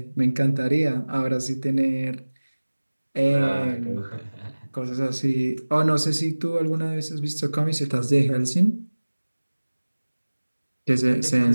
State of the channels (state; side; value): inverted; both; correlation -1.00